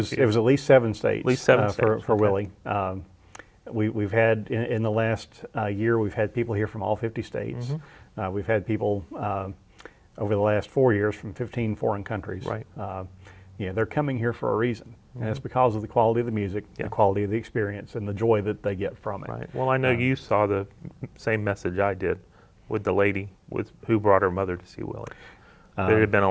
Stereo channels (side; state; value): both; identical; correlation 1.00